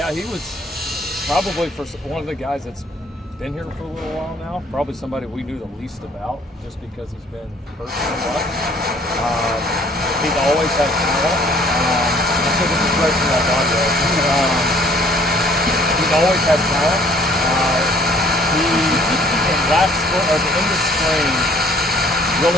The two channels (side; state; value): both; normal; correlation 0.58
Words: he was probably one of the guys that's been here for a little while now. Probably somebody we knew the least about, just because he's been hurt so much. He's always had talent. I think this is great for that audio. He's always had talent. He, at the end of spring,